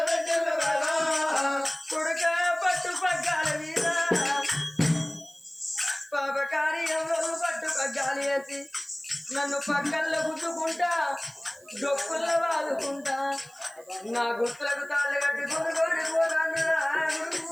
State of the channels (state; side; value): noise; right; hiss, 27 dB below the sound